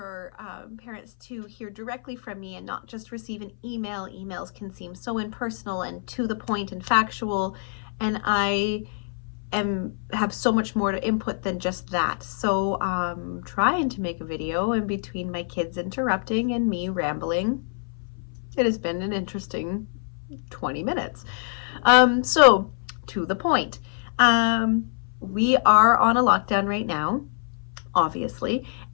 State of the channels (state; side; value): silent; right; 58 dB below the other